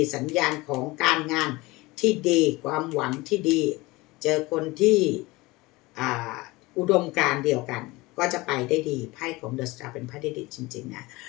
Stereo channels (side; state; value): right; quieter; 21.8 dB